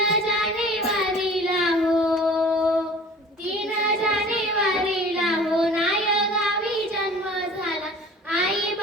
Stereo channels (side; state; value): both; normal; correlation 0.45